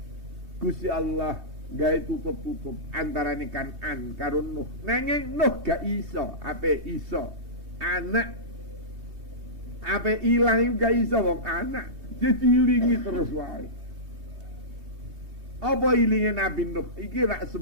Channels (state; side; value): late; left; 3.2 ms